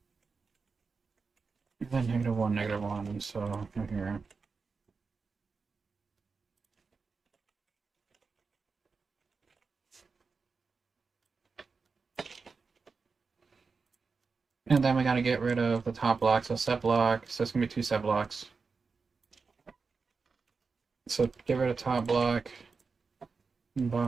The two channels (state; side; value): quieter; left; 4.7 dB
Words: then -1, -1, so here. And then we gotta get rid of the top block, so set block, so it's gonna be 2 set blocks. So get rid of top block, and